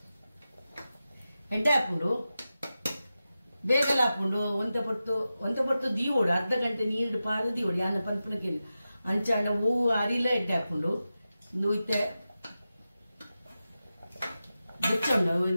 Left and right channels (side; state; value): both; inverted; correlation -0.92